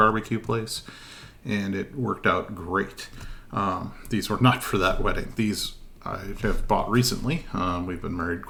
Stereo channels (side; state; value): both; identical; correlation 1.00